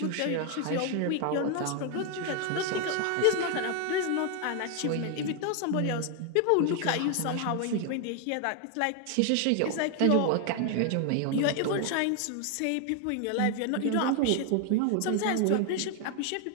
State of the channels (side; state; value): both; different; correlation 0.01